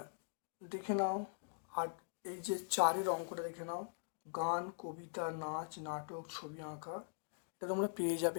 দেখে নাও আর এই যে 4-এর অঙ্কটা দেখে নাও, গান, কবিতা, নাচ, নাটক, ছবি আঁকা, এটা তোমরা পেয়ে যাবে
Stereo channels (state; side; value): silent; right; digital silence